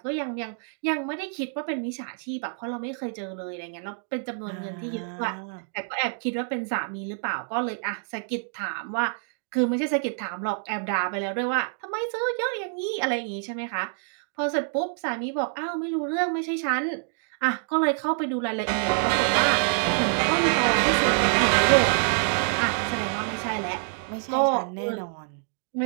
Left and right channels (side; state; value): left; silent; 60 dB below the other